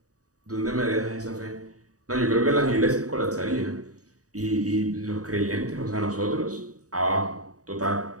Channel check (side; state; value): left; late; 0.66 ms